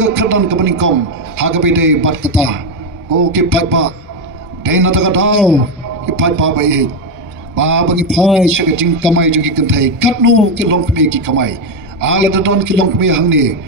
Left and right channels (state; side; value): normal; both; correlation 0.08